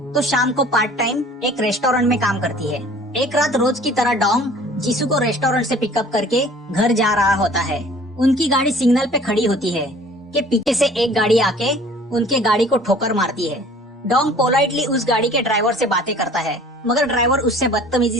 तो शाम को पार्ट टाइम एक रेस्टोरेंट में काम करती है। एक रात रोज की तरह डॉन जिसू को रेस्टोरेंट से पिकअप करके घर जा रहा होता है। उनकी गाड़ी सिग्नल पे खड़ी होती है कि पीछे से एक गाड़ी आके उनके गाड़ी को ठोकर मारती है। डॉन पोलाइटली उस गाड़ी के ड्राइवर से बातें करता है, मगर ड्राइवर उससे बदतमीजी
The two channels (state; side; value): normal; both; correlation 0.49